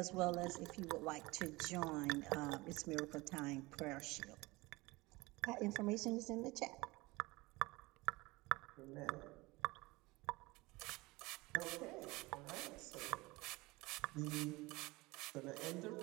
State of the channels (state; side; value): quieter; left; 22.4 dB